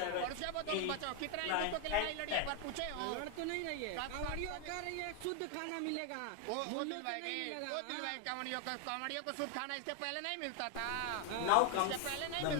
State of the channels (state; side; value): different; both; correlation 0.00